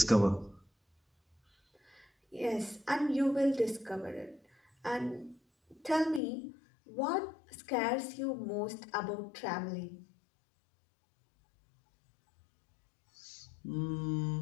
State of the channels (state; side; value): drops out; right; at 6.2 s